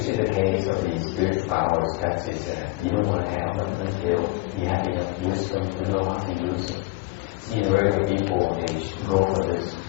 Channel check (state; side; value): quieter; right; 22.3 dB